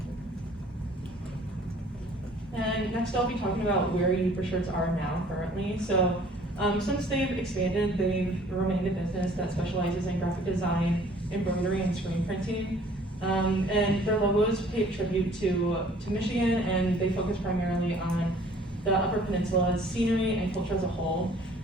And next I'll be talking about where Uber Shirts are now currently. So since they've expanded, they've remained a business that specializes in graphic design, embroidery, and screen printing. And their logos pay tribute to Michigan, and they focus primarily on the Upper Peninsula's scenery and culture as a whole.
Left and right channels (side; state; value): both; normal; correlation 0.54